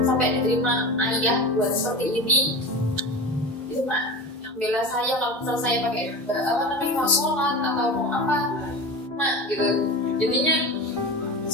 sampai diterima ayah buat seperti ini. Itu mak bela saya kalau misal saya pakai mau sholat atau mau apa, mak gitu. Jadinya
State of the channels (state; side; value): normal; both; correlation 0.29